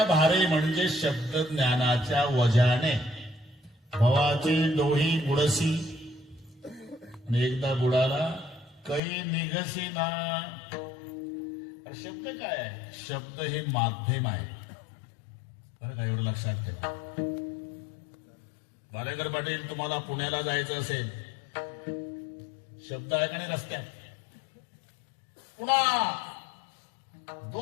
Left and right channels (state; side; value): drops out; right; at 9.0 s